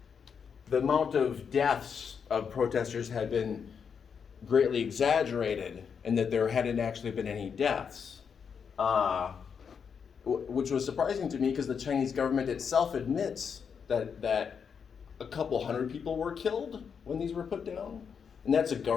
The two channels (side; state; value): right; quieter; 6.6 dB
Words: the amount of deaths of protesters had been greatly exaggerated, and that there hadn't actually been any deaths, which was surprising to me because the Chinese government itself admits that a couple hundred people were killed when these were put down, and that's a